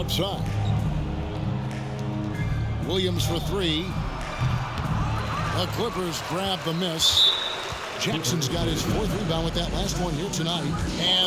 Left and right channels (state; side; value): identical; both; correlation 1.00